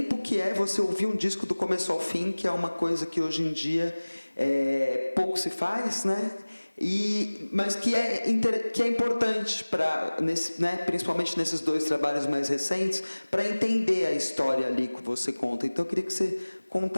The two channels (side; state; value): both; inverted; correlation -1.00